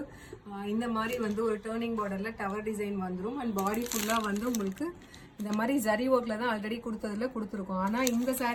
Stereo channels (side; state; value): both; identical; correlation 1.00